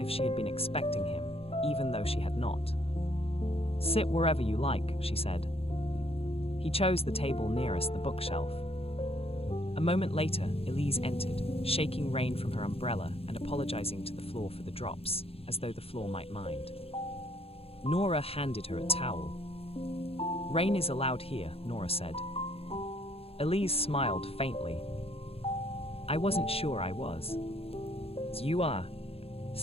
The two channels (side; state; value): right; late; 0.28 ms